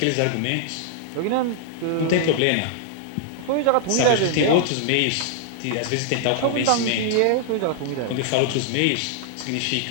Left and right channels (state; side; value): different; both; correlation -0.01